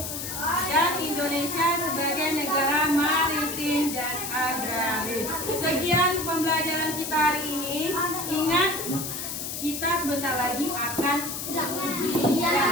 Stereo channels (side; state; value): left; noise; hiss, 5 dB below the sound